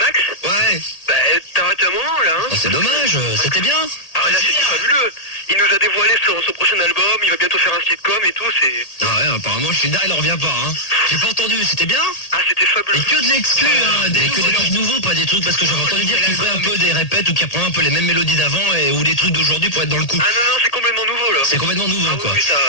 Ouais. Bah t'as raté un moment là, hein. Oh, c'est dommage, c'était bien. Ah ouais, là c'est fabuleux. Il nous a dévoilé son prochain album, il va bientôt faire un sitcom et tout, c'est... Ah ouais, apparemment je suis là, il en revient pas hein. J'ai pas entendu, c'était bien? Ah c'était fabuleux. Et que de l'exclu, hein, que des trucs nouveaux, pas des trucs, parce que j'avais entendu dire qu'il ferait un peu des répètes ou qu'il reprend un peu les mêmes mélodies d'avant ou des trucs d'aujourd'hui pour être dans le coup. Ah non, c'est complètement nouveau là. C'est complètement nouveau Ah quoi. oui, ça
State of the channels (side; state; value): right; late; 1.8 ms